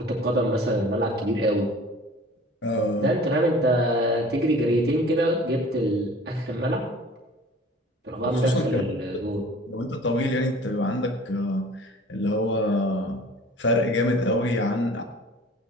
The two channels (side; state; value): both; normal; correlation 0.47